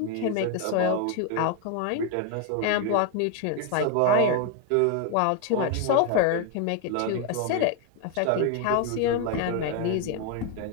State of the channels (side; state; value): both; different; correlation 0.01